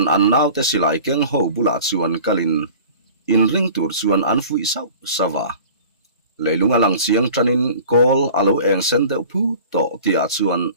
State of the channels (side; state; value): both; inverted; correlation -0.43